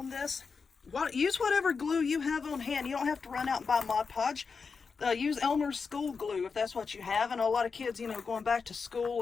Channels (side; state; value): right; quieter; 5.2 dB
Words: this. Use whatever glue you have on hand. You don't have to run out and buy Mod Podge. Use Elmer's school glue if that's what you have. And a lot of kids, you know, going back to school,